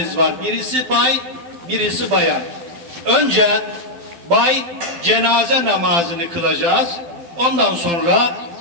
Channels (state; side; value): late; left; 12 ms